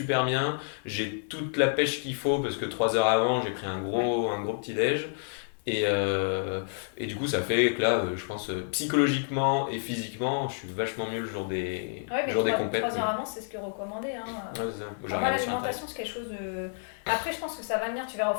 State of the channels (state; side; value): silent; right; 56 dB below the other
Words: bien, j'ai toute la pêche qu'il faut parce que 3 heures avant, j'ai pris un gros petit-déj. Et du coup, ça fait que là, je pense psychologiquement et physiquement, je suis vachement mieux le jour des, Ouais, mais le jour des 3 compètes. heures avant, c'est ce que recommandé. Hein. Ouais, c'est ça. J'ai Moi, regardé sur Internet. l'alimentation, c'est quelque chose de. Après, je pense que ça va venir. Tu verras au